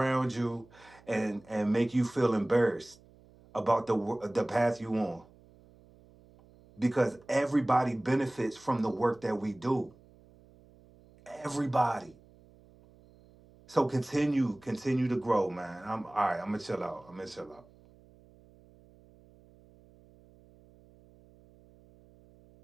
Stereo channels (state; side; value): noise; right; hum, 26 dB below the sound